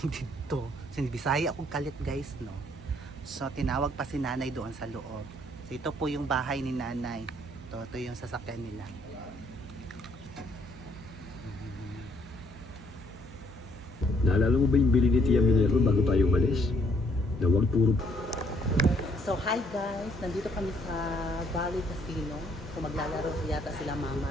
dito. Sinibisaya akong kalit guys, no. So tinawag pa si nanay doon sa loob. So ito po yung bahay ni nanay. Ito yung sasakyan nila. Naalala mo ba yung bili ni Tia Minerva bago tayo umalis? Na wag puro... So hi guys! Nandito kami sa Bali Casino. So maglalaro yata sila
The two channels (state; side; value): normal; both; correlation 0.67